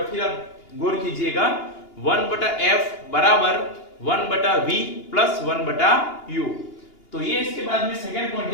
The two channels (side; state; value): right; late; 2.8 ms